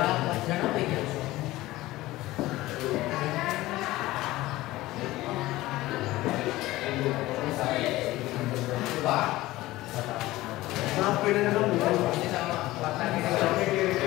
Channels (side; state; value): right; quieter; 17.7 dB